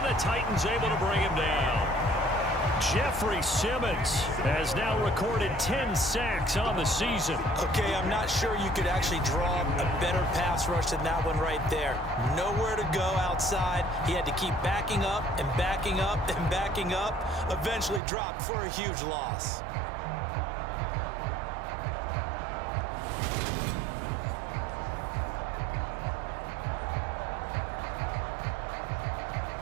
the Titans able to bring him down. Jeffrey Simmons has now recorded 10 sacks on the season. Okay, I'm not sure you could actually draw a better pass rush than that one right there. Nowhere to go outside. He had to keep backing up and backing up and backing up. Eventually dropped for a huge loss.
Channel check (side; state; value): left; drops out; at 18.0 s